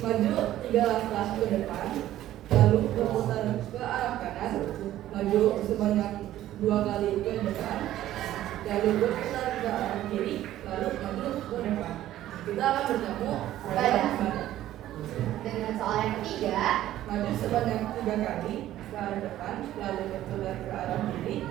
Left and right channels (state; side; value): quieter; left; 13.5 dB